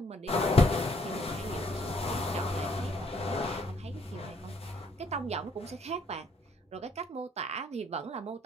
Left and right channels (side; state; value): both; normal; correlation 0.67